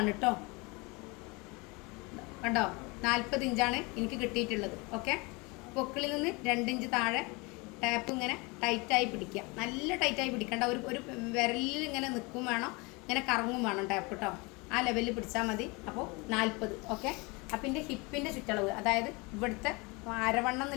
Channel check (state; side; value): quieter; right; 27.1 dB